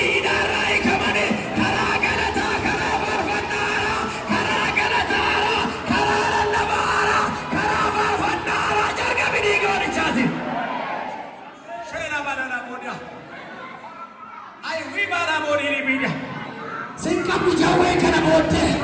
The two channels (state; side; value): identical; both; correlation 1.00